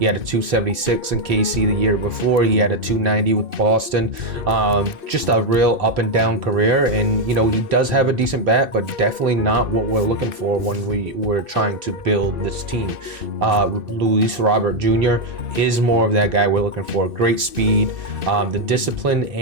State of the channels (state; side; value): late; left; 2.6 ms